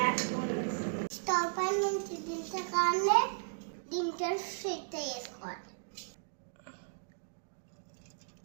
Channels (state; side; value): silent; left; digital silence